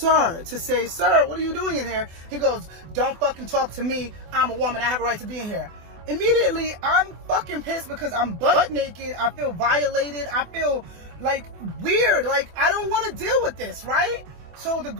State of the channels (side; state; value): left; late; 24 ms